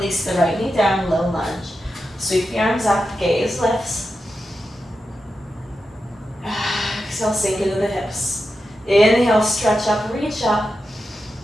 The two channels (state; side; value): normal; both; correlation 0.90